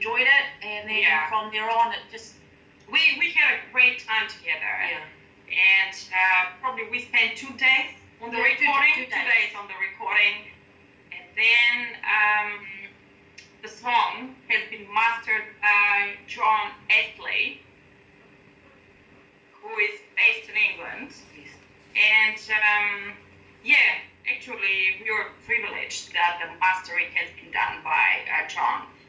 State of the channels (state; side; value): identical; both; correlation 1.00